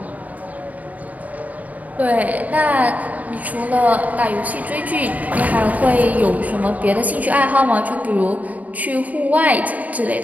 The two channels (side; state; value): left; late; 0.074 ms